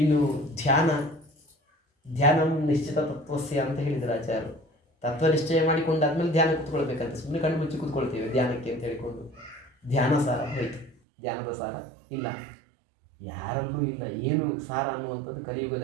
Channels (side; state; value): left; drops out; at 11.0 s